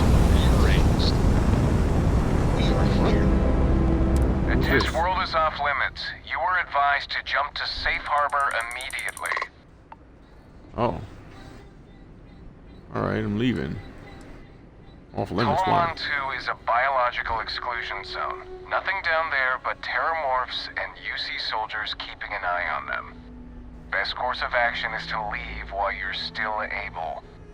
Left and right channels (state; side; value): identical; both; correlation 1.00